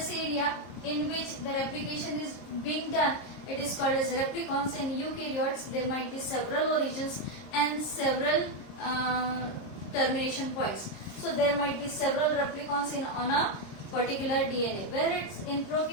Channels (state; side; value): late; right; 26 ms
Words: area in which the replication is being done, it is called as replicons. In eukaryotes, there might be several origins and several termination points. So there might be several replicons on a particular DNA. Where it's in